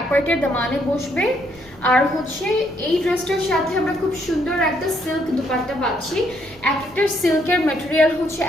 পার্টের দামানে বসবে। আর হচ্ছে এই ড্রেসটার সাথে আমরা খুব সুন্দর একটা সিল্ক দুপাট্টা পাচ্ছি। এক একটা সিল্কের ম্যাটেরিয়াল হচ্ছে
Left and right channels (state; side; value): noise; left; rumble, 28 dB below the sound